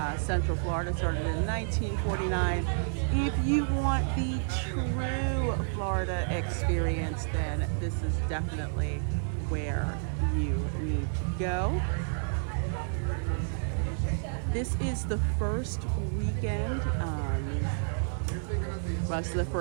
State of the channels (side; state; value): left; silent; 58 dB below the other